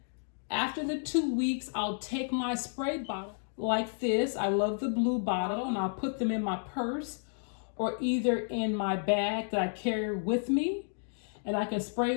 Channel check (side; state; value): right; silent; digital silence